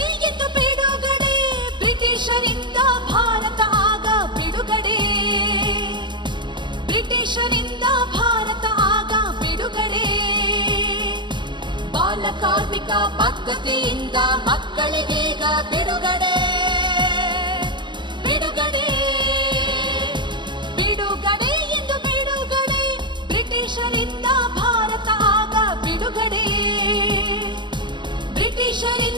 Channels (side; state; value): left; late; 0.22 ms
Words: ಎಂದು ಬಿಡುಗಡೆ, ಬ್ರಿಟಿಷರಿಂದ ಭಾರತ ಆಗ ಬಿಡುಗಡೆ, ಬ್ರಿಟಿಷರಿಂದ ಭಾರತ ಆಗ ಬಿಡುಗಡೆ. ಬಾಲ ಕಾರ್ಮಿಕ ಪದ್ಧತಿಯಿಂದ ಮಕ್ಕಳಿಗೀಗ ಬಿಡುಗಡೆ, ಬಿಡುಗಡೆ, ಬಿಡುಗಡೆ ಎಂದು ಬಿಡುಗಡೆ, ಬ್ರಿಟಿಷರಿಂದ ಭಾರತ ಆಗ ಬಿಡುಗಡೆ,